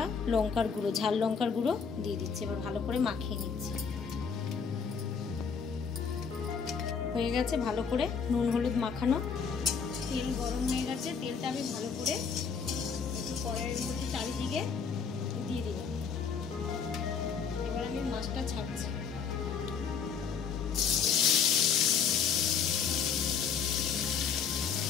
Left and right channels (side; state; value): right; quieter; 6.2 dB